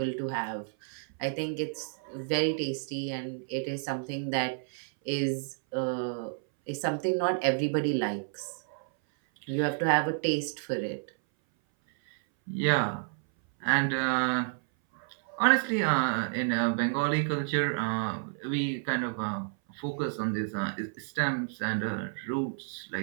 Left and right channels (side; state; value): left; silent; 58 dB below the other